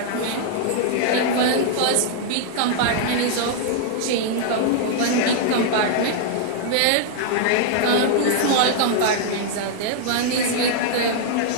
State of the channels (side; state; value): both; different; correlation 0.00